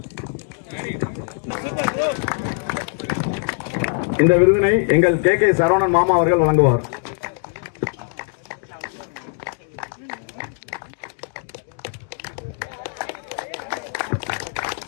எங்கள் கே சரவணன் மாமா அவர்கள் வழங்குவார்.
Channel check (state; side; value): silent; right; 59 dB below the other